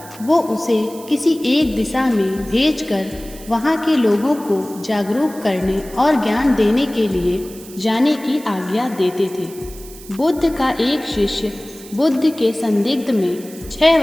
वो उसे किसी एक दिशा में भेजकर वहाँ के लोगों को जागरूक करने और ज्ञान देने के लिए जाने की आज्ञा देते थे। बुद्ध का एक शिष्य बुद्ध के संदिग्ध में 6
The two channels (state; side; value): noise; right; hiss, 18 dB below the sound